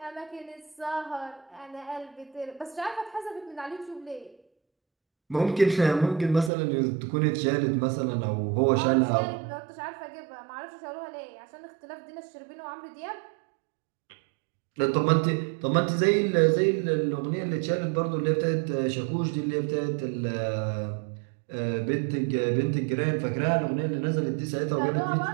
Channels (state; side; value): drops out; left; at 6.5 s